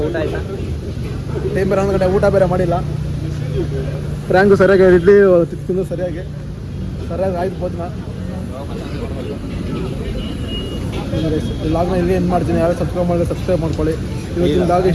ಆಯ್ತಾ? ಟೈಮ್ ಬೇರೆ 11 ಗಂಟೆ ಊಟ ಬೇರೆ ಮಾಡಿಲ್ಲ ಫ್ರ್ಯಾಂಕು ಸರಿಯಾಗಿ ಇಡ್ಲಿ ತಿಂದು ಸರಿಯಾಗಿ ಆಯ್ತು ಭೋಜನ ಈ ಲಾಗ್ನ ಇಲ್ಲಿ ಏನು ಮಾಡ್ತೀನಿ ಯಾರು ಸಬ್ಸ್ಕ್ರೈಬ್ ಮಾಡಿದ್ರೆ ಸಬ್ಸ್ಕ್ರೈಬ್ ಮಾಡ್ಕೊಳ್ಳಿ ಇವತ್ತಿನ ಲಾಗ್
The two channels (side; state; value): both; identical; correlation 1.00